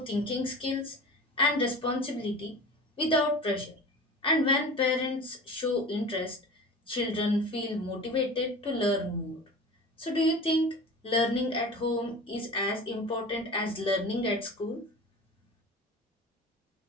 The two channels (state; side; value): normal; both; correlation 0.36